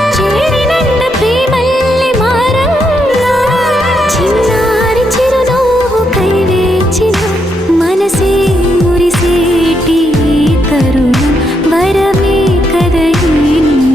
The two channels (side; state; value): both; normal; correlation 0.79